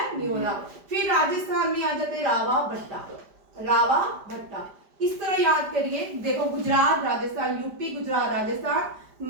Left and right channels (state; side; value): late; left; 5.0 ms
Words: नहीं हो रहा। फिर राजस्थान में आ जाते हैं रावा भट्टा। इस तरह याद करिए, देखो गुजरात राजस्थान, यूपी गुजरात राजस्थान,